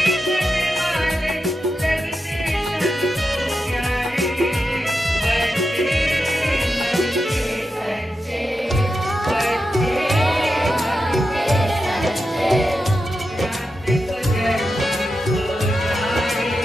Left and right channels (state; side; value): normal; both; correlation 0.89